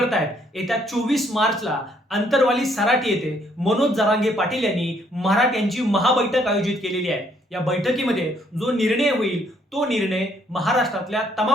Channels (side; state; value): both; normal; correlation 0.68